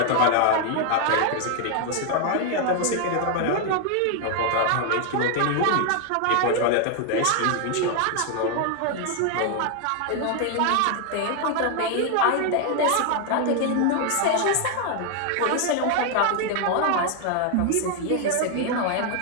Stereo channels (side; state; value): both; different; correlation 0.00